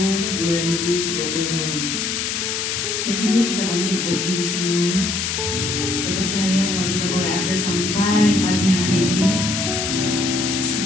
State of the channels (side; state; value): left; noise; hiss, 1 dB below the sound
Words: 2022. Saya jemput kita bangkit berdiri semua. Kita percaya kalau kita boleh ada sampai pagi hari ini,